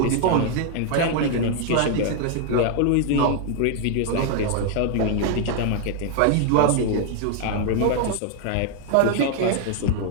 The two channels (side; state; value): both; different; correlation 0.00